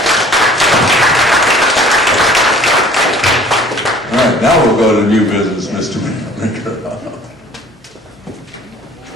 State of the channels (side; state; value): both; normal; correlation 0.51